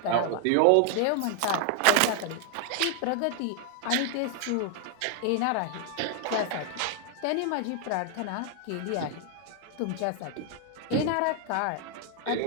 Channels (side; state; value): both; different; correlation 0.00